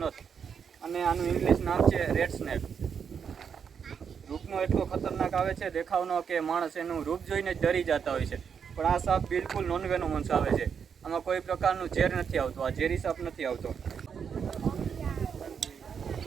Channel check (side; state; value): left; quieter; 6.9 dB